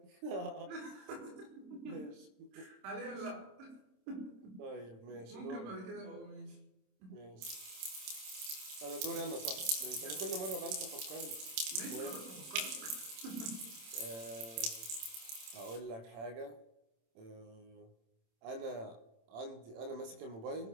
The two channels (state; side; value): late; left; 27 ms